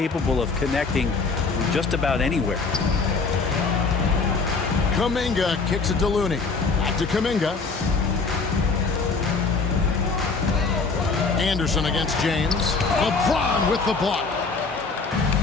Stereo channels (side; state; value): right; quieter; 4.4 dB